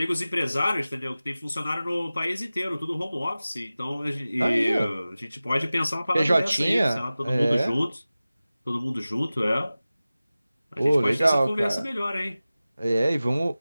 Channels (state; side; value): inverted; both; correlation -0.96